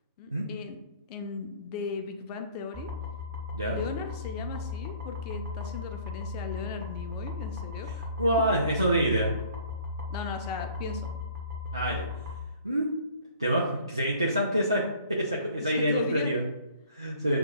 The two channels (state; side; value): inverted; both; correlation -0.53